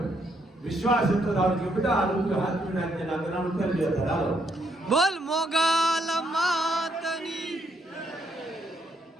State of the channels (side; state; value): both; normal; correlation 0.73